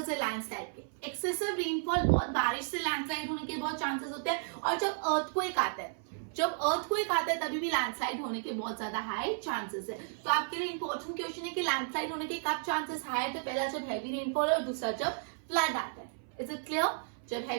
है लैंडस्लाइड के। एक्सेसिव रेनफॉल, बहुत बारिश से लैंडस्लाइड होने के बहुत चांसेस होते हैं, और जब अर्थक्वेक आता है, जब अर्थक्वेक आता है तभी भी लैंडस्लाइड होने के बहुत ज्यादा हाई चांसेस है। तो आपके लिए इंपॉर्टेंट क्वेश्चन है कि लैंडस्लाइड होने के कब चांसेस हाई है। तो पहला जब हैवी रेनफॉल है और दूसरा जब फ्लड आता है। Is it clear? जब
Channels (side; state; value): left; silent; 56 dB below the other